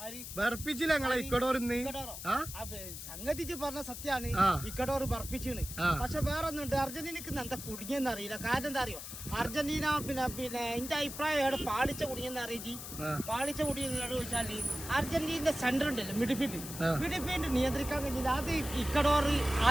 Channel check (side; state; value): left; noise; hiss, 9 dB below the sound